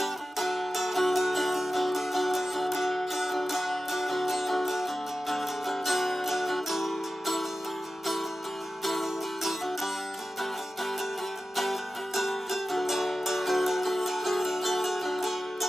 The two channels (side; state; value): both; normal; correlation 0.94